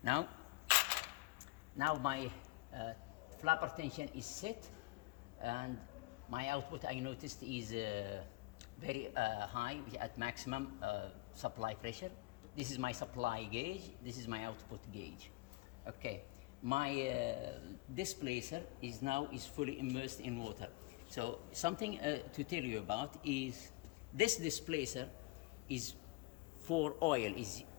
now my flapper tension is set, and my output, I noticed, is very high, at maximum supply pressure. This is my supply gauge. This is my output gauge. Okay, my displacer is fully immersed in water. So something to tell you about is this displacer is for oil, is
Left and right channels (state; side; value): quieter; right; 23.1 dB